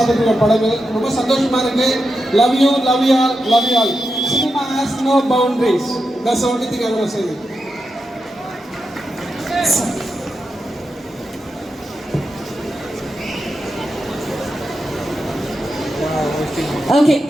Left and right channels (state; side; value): normal; both; correlation 0.88